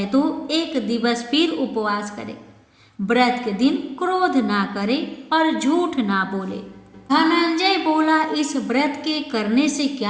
तो एक दिवस फिर उपवास करे। व्रत के दिन क्रोध ना करे और झूठ ना बोले। धनंजय बोला, इस व्रत के करने से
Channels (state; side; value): identical; both; correlation 1.00